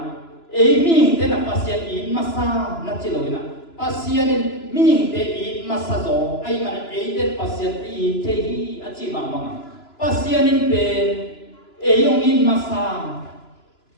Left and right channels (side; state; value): right; late; 3.0 ms